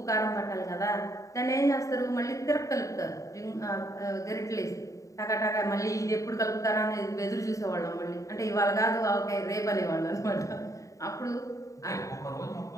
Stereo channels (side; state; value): right; late; 0.16 ms